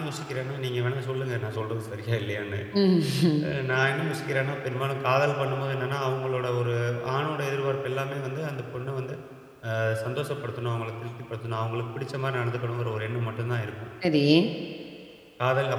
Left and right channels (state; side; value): identical; both; correlation 1.00